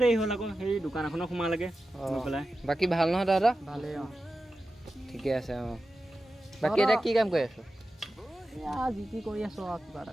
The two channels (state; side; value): normal; both; correlation 0.93